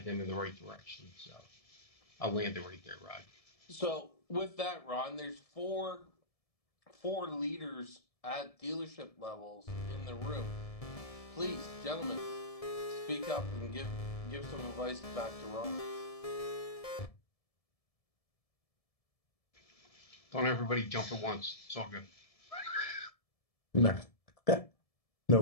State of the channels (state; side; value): late; right; 1.7 ms